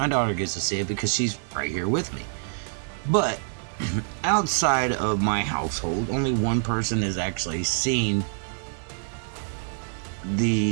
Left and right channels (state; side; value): silent; left; digital silence